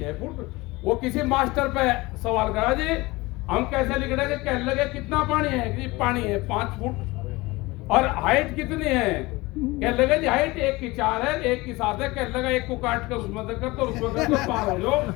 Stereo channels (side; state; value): right; quieter; 21.9 dB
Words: फुट। वो किसी मास्टर पे सवाल करा जी हम कैसे लिख कहने लगे कितना पानी है, कि पानी है 5 फुट। और हाइट कितनी है, कह लगे जी हाइट एक की 4 है, एक की 7 है, कह लगा एक को काट कर उसमें देकर तो उसमें देकर पार हो